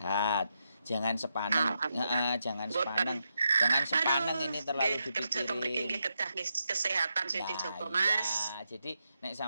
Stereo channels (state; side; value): inverted; both; correlation -0.84